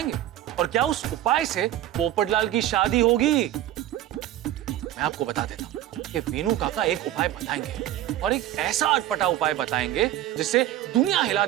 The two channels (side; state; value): left; quieter; 13.2 dB